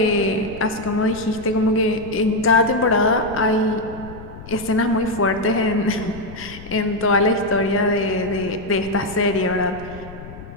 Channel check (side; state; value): left; noise; rumble, 15 dB below the sound